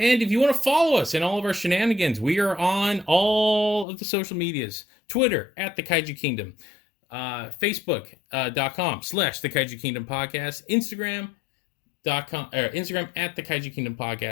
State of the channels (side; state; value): right; drops out; at 3.9 s